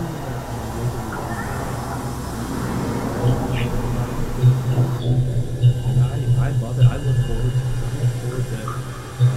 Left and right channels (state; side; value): identical; both; correlation 1.00